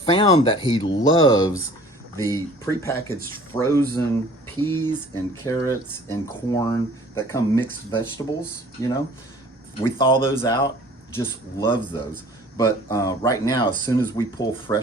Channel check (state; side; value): normal; both; correlation 0.50